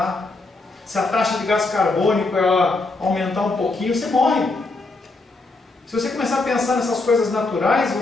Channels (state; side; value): quieter; right; 3.4 dB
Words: Se a taxa de gás carbônico ela aumentar um pouquinho, você morre. Se você começar a pensar nessas coisas naturais,